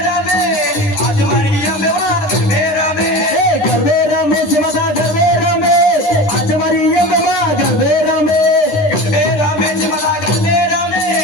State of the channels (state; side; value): late; right; 9.9 ms